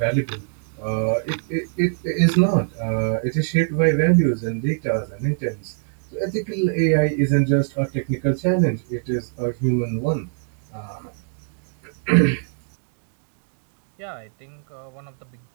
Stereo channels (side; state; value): left; silent; digital silence